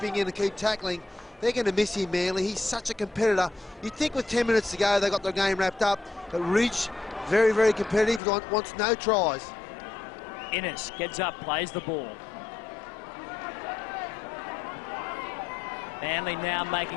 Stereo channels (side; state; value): right; drops out; at 8.2 s